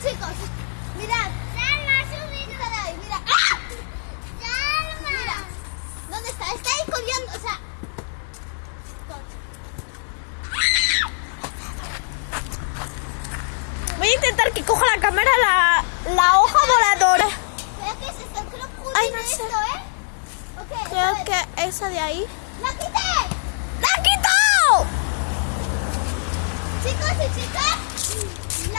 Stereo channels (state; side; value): silent; right; 64 dB below the other